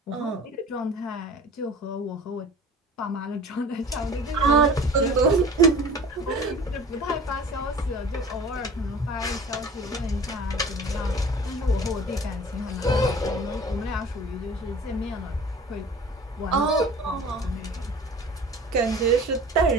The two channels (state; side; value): normal; both; correlation 0.43